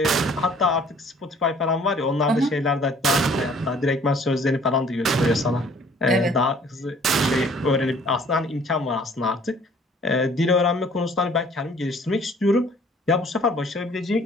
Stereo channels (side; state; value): both; normal; correlation 0.56